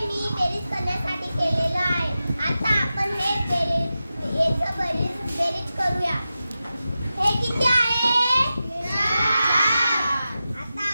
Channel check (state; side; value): inverted; both; correlation -0.93